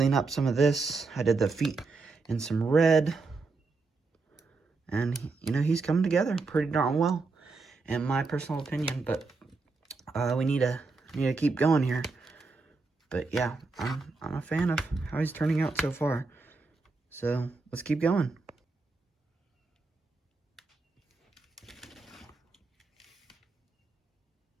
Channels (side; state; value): left; quieter; 4.0 dB